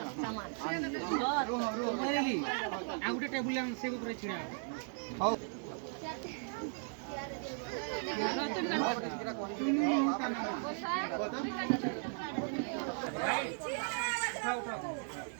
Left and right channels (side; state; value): left; silent; 53 dB below the other